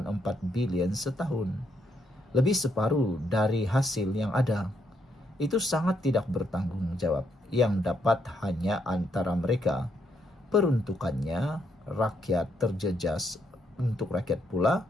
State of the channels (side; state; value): both; normal; correlation 0.76